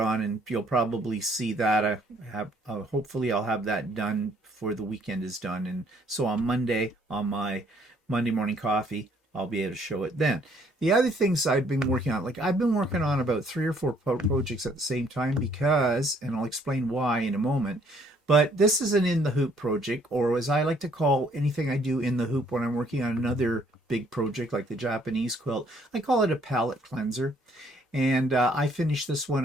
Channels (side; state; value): both; normal; correlation 0.64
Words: and you'll probably see that. Hopefully I'll have that done before the weekend is done. And so on Monday, on my Monday morning coffee, I'll be able to show it then. The other things I've been working on, like I've been working on about 3 or 4 projects at the same time because, and I'll explain why in a moment, but this is an in the hoop project, or as I like to call anything I do in the hoop when I'm working on another big project like the Japanese quilt, I call it a palette cleanser. And I finished this